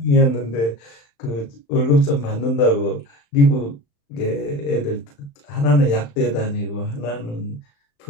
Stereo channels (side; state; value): right; late; 35 ms